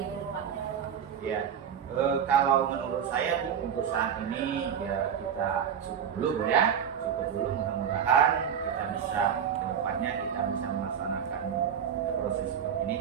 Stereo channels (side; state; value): left; quieter; 8.1 dB